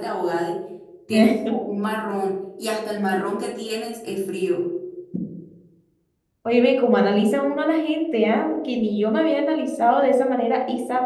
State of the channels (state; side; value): identical; both; correlation 1.00